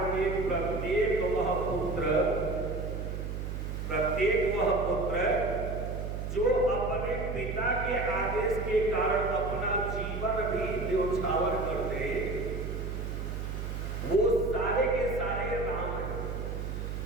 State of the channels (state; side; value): noise; right; hum, 4 dB below the sound